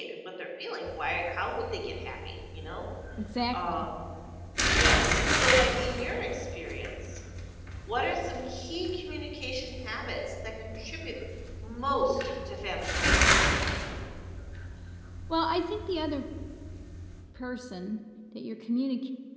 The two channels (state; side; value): identical; both; correlation 1.00